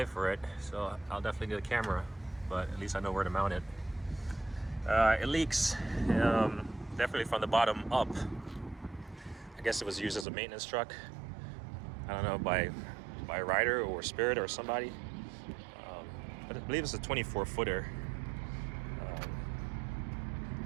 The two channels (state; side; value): drops out; left; at 10.2 s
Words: for it, so I'll definitely get a camera, but at least I know where to mount it. It leaks, definitely from the bottom up. I guess it was used as a maintenance truck. I don't know, by Ryder or Spirit or somebody. But I believe it's a 24-footer.